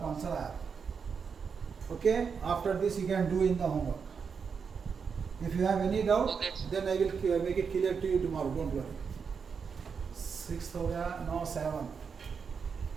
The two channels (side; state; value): left; quieter; 6.0 dB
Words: आंसर आया। Okay, after this you can do in the homework. If you have any doubt then I will make it clear to you tomorrow, don't worry. 6 हो गया, now 7।